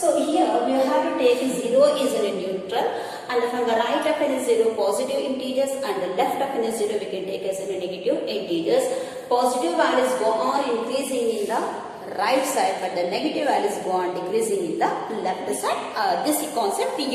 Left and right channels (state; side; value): identical; both; correlation 1.00